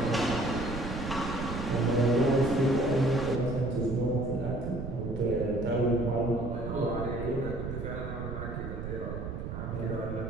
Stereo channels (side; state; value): right; noise; rumble, 6 dB below the sound